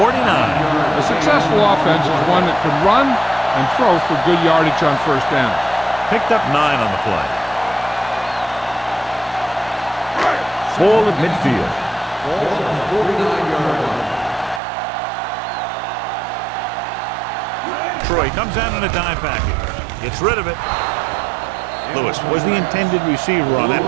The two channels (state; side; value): drops out; left; at 14.6 s